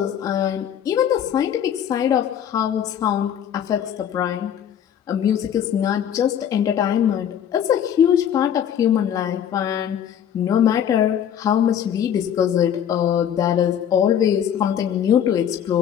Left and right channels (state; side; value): quieter; right; 9.3 dB